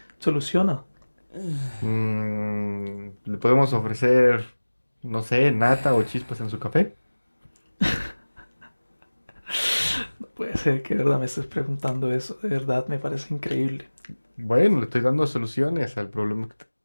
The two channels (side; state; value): both; inverted; correlation -1.00